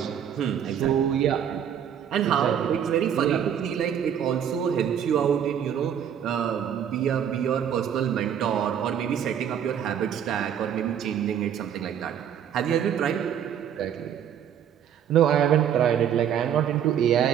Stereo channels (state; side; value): quieter; left; 9.0 dB